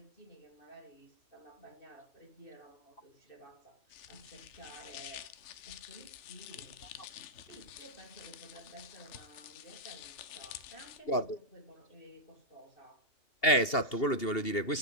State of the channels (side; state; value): right; late; 2.8 ms